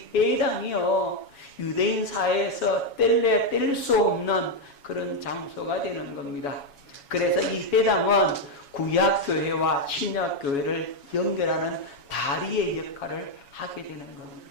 회당이요 유대인 사회에서 뗄래야 뗄 수 없는 그런 장소가 되는 겁니다. 그래서 이 회당은 구약교회와 신약교회를 연결하는 다리의 역할을 하게 되는 겁니다.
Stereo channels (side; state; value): right; late; 7.2 ms